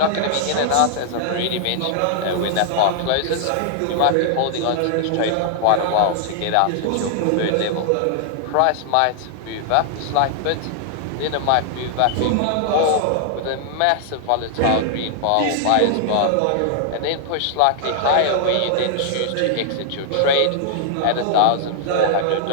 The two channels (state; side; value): different; both; correlation -0.01